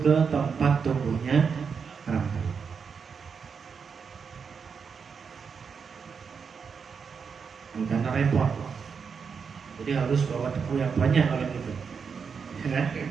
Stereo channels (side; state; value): left; quieter; 6.0 dB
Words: ke tempat tumbuhnya rambut. Karena repot. Jadi harus bawa debu yang banyak kalau gitu. Ya.